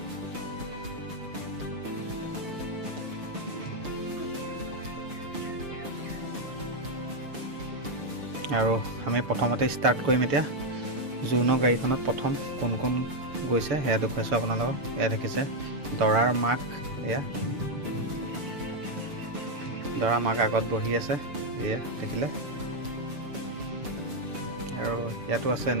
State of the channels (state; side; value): late; left; 6.9 ms